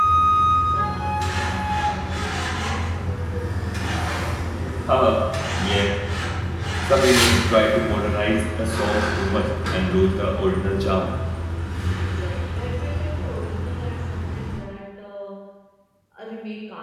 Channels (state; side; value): identical; both; correlation 1.00